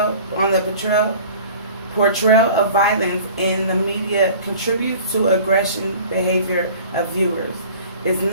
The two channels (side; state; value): both; inverted; correlation -0.45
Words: portrayal of violence in the media contributes to aggression behavior of viewers. It's